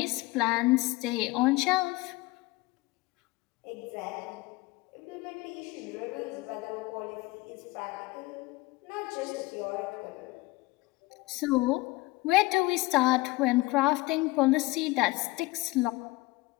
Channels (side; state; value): right; quieter; 21.2 dB